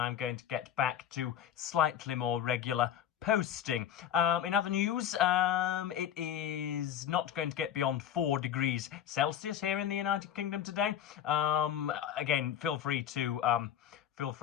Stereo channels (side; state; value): right; quieter; 9.9 dB